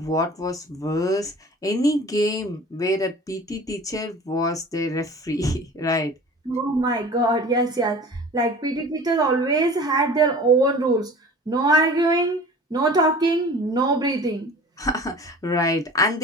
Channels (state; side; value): normal; both; correlation 0.42